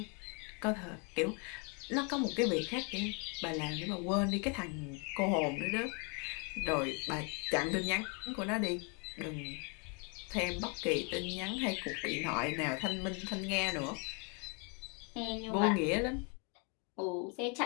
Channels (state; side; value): quieter; right; 35.3 dB